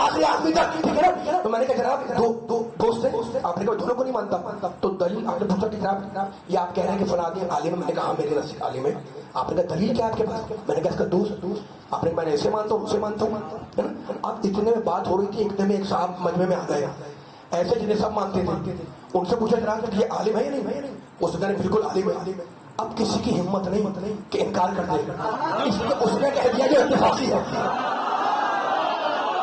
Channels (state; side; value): identical; both; correlation 1.00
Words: آدمی تک, ٹھیک ہے نا. تو میں نے کہا جناب دو دوست ہیں, آپ نے کہا دونوں کو نہیں مانتا, تو دلیل آپ نے پوچھا کہ جناب یہ آپ کہہ رہے ہیں کہ فلاں عالم. میں نے کہا میرے نزدیک عالم ہے. آپ نے کہا دلیل کیا آپ کے پاس؟ میں نے کہا اس کا دوست. آپ نے میں نے ایسے مانتا ہوں اسے مانتا ہوں. اب اتنے میں بات ہو رہی تھی, ایک دم ایک صاحب مجمع میں آ گئے ایسے جنہیں سب مانتے تھے. ان سے پوچھا جناب کہ یہ عالم ہے یا نہیں؟ اس نے بالکل عالم ہے. اب کسی کی ہمت نہیں کہ انکار کر دے, اس لیے اس نے کہہ دیا کہ اتفاقی ہے.